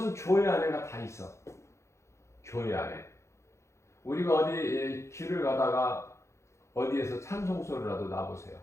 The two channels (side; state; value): right; late; 0.14 ms